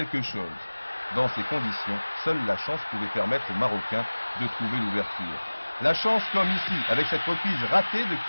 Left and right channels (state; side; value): inverted; both; correlation -1.00